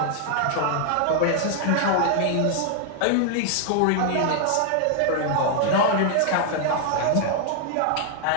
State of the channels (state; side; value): different; both; correlation 0.00